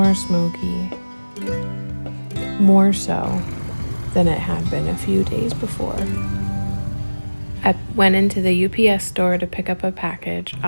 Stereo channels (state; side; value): inverted; both; correlation -1.00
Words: smoky, more so than it had been a few days before. I went into the UPS store to pick up a package